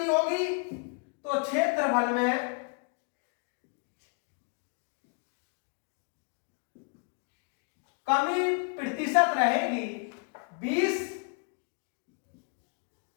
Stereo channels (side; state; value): right; quieter; 39.5 dB